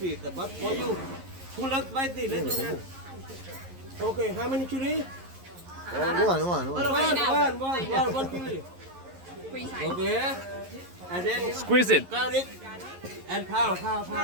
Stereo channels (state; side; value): late; left; 11 ms